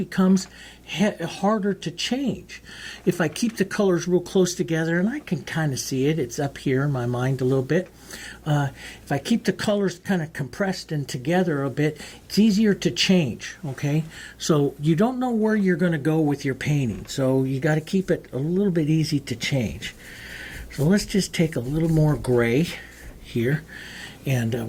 harder to change. If I keep the colors real close together, and I can kind of see it, it's up here in my mind a little bit. If I keep the colors kind of compressed and together a bit, it's easier to change, okay? So you don't know where you're going to go with your painting, so you got to keep it a little bit easy to change. So let's just take a little more gray here, and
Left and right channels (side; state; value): both; identical; correlation 1.00